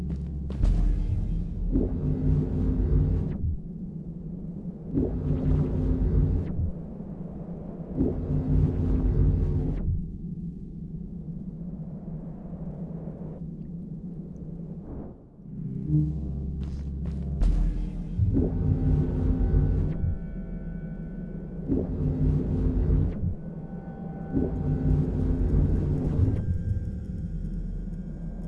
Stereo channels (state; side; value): identical; both; correlation 1.00